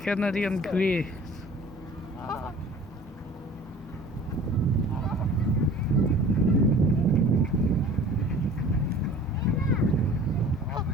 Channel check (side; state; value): both; normal; correlation 0.46